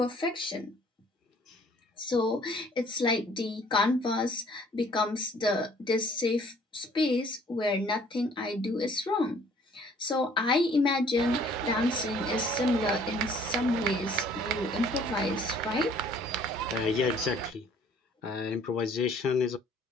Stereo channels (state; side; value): normal; both; correlation 0.57